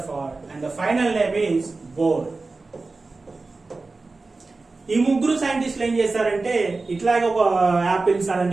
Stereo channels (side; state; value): left; quieter; 3.7 dB